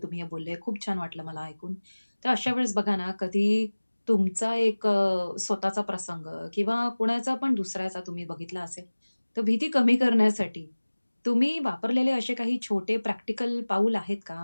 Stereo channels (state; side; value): inverted; both; correlation -1.00